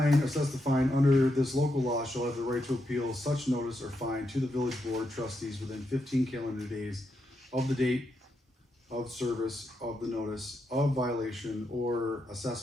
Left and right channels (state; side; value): normal; both; correlation 0.83